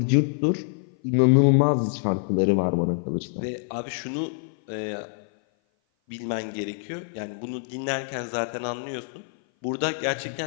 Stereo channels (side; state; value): right; silent; 56 dB below the other